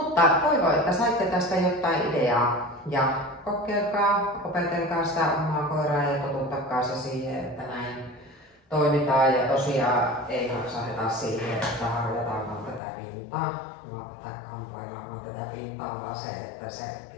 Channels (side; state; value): right; drops out; at 12.8 s